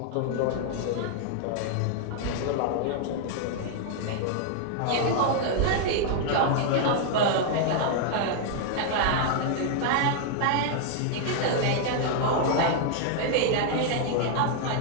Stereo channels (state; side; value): different; both; correlation 0.00